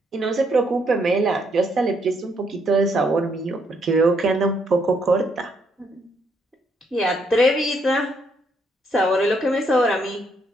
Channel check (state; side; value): normal; both; correlation 0.73